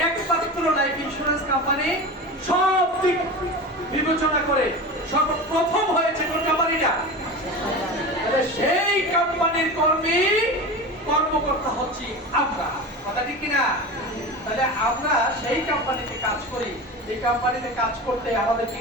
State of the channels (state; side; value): normal; both; correlation 0.29